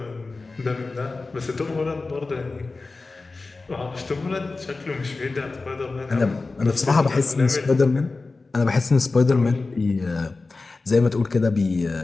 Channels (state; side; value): quieter; right; 3.7 dB